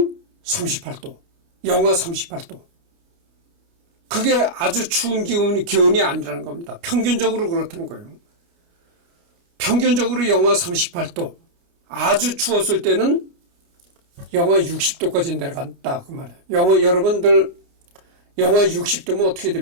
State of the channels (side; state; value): left; late; 29 ms